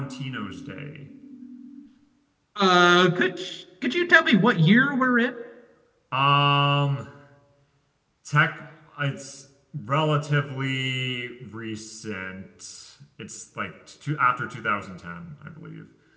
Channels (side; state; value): both; identical; correlation 1.00